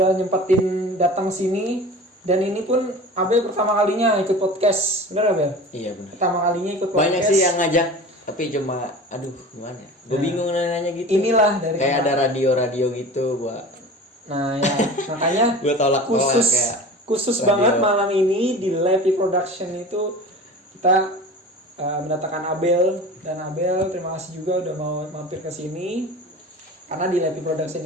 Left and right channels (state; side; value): normal; both; correlation 0.36